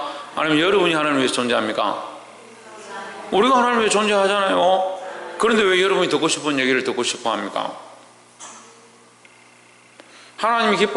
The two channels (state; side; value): identical; both; correlation 1.00